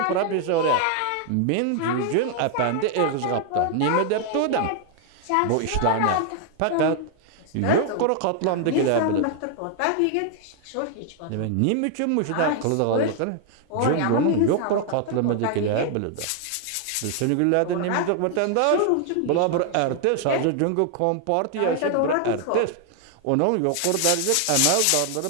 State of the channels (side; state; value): both; different; correlation 0.00